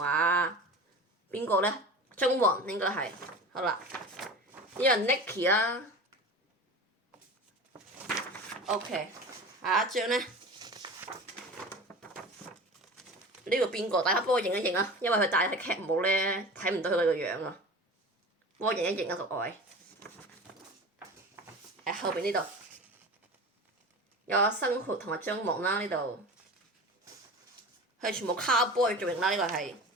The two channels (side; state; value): both; normal; correlation 0.34